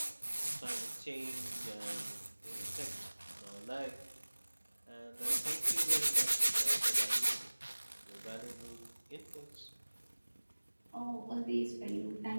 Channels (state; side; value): inverted; both; correlation -1.00